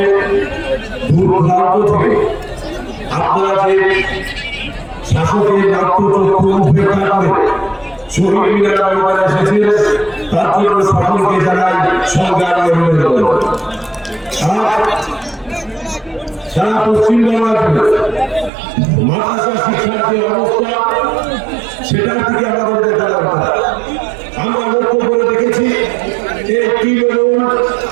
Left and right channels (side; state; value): left; drops out; at 18.5 s